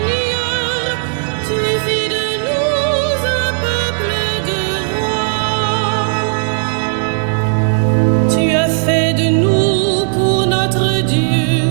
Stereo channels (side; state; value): left; silent; digital silence